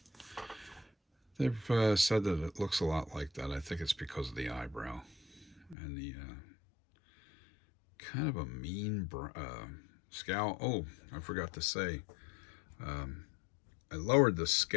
they've said that it looks a lot like that. I think it's because of the eyebrow and the kind of a mean scowl. Oh, I forgot to say, I lowered the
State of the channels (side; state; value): right; drops out; at 5.8 s